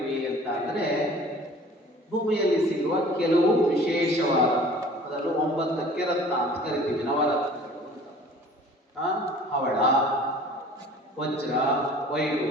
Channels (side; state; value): both; normal; correlation 0.48